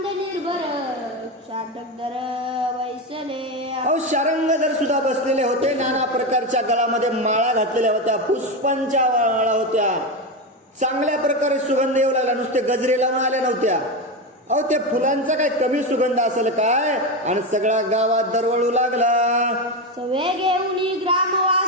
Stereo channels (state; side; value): normal; both; correlation 0.15